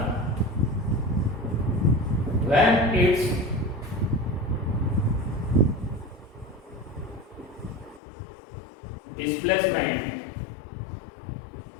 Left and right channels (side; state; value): right; drops out; at 8.0 s